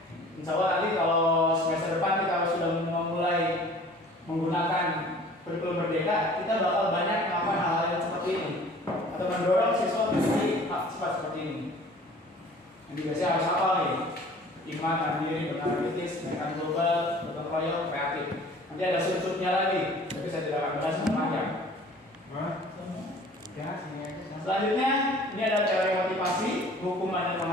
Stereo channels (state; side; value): normal; both; correlation 0.48